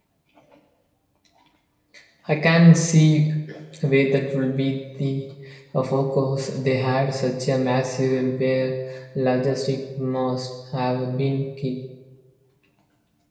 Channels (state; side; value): identical; both; correlation 1.00